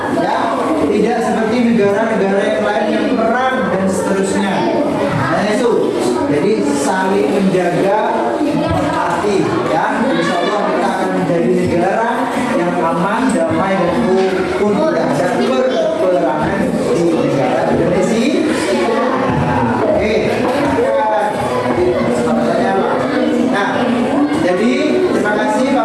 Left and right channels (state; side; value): identical; both; correlation 1.00